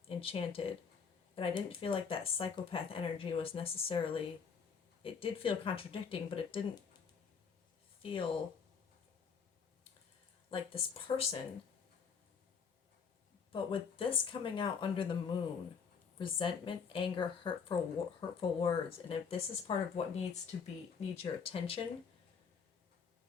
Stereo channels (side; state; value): right; quieter; 6.2 dB